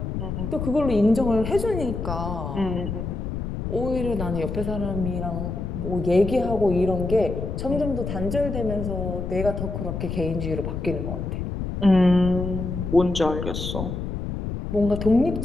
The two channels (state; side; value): noise; left; rumble, 4 dB below the sound